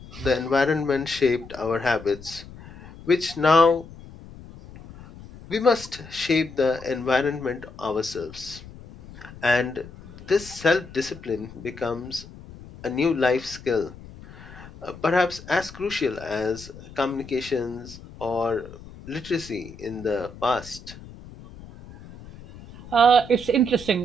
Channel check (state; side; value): noise; left; rumble, 17 dB below the sound